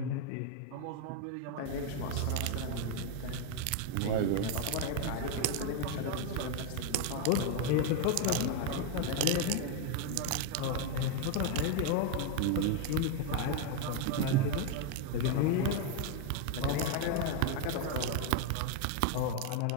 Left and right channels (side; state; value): both; different; correlation 0.01